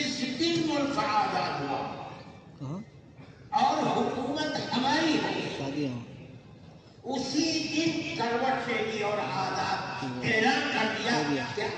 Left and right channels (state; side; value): identical; both; correlation 1.00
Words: دن ملک آزاد ہوا اور حکومت ہماری ہوئی، اسی دن کروٹ لے لی اور آزاد اعلان کر دیا کہ